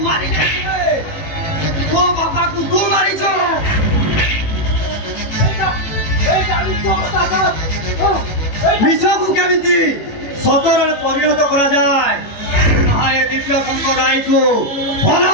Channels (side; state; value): right; late; 18 ms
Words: मारी तो बाबा को तू मारी जो मिशा को केमिति सतरे परिणत करा जाए ना ए दिव्य शंकर राय को